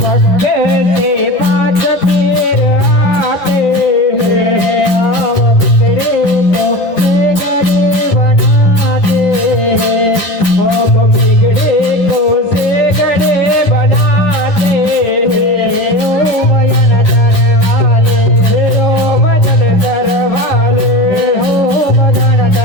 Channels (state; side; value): late; right; 10 ms